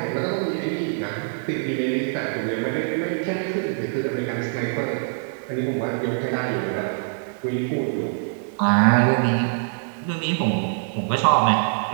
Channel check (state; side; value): silent; left; 61 dB below the other